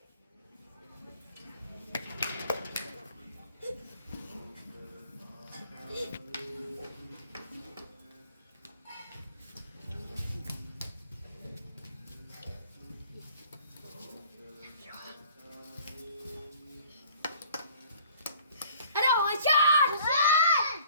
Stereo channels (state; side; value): inverted; both; correlation -0.53